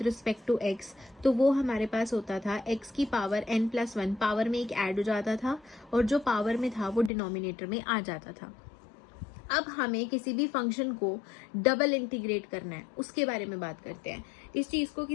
रिस्पेक्ट टू एक्स, तो वो हमारे पास होता था एक्स की पावर n प्लस 1 पावर में एक ऐड हो जाता था और जो पावर में था वो डिनोमिनेटर में आ जाता था. अब हमें किसी भी फंक्शन को डबल इंटीग्रेट करना है, उसके बारे में बात करते हैं. इस चीज को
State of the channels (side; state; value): right; drops out; at 7.1 s